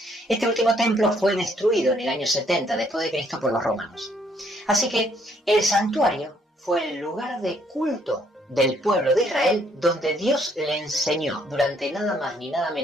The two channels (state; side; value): normal; both; correlation 0.67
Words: Este último templo fue destruido en el año 70 después de Cristo por los romanos. Así que el santuario fue el lugar de culto del pueblo de Israel donde Dios le enseñó durante nada más ni nada